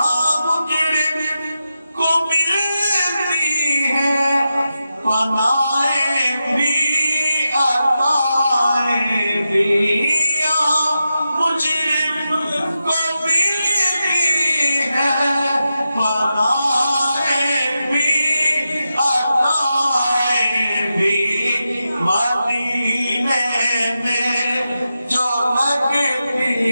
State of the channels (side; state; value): both; inverted; correlation -0.89